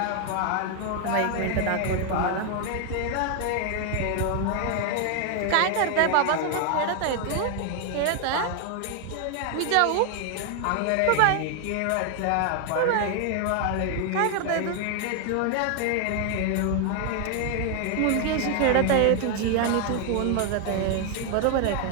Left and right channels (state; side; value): different; both; correlation 0.00